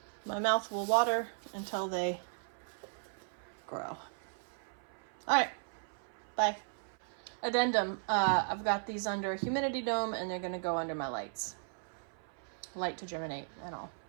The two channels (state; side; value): silent; left; 54 dB below the other